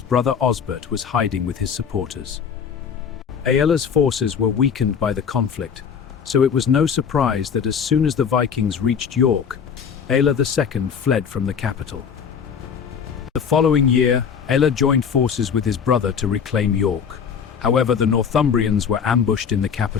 brother Osbert was hiding with his supporters. Aelle's forces were weakened by the conflict, so it was no surprise that as soon as the Vikings reached York, Aelle II fled from the capital. The following year, Aelle joined forces with his brother to reclaim York. However, the Northumbrians were ambushed in the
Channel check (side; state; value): right; quieter; 7.0 dB